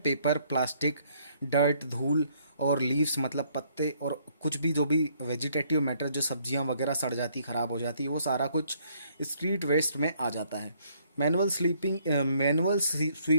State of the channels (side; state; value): both; inverted; correlation -0.67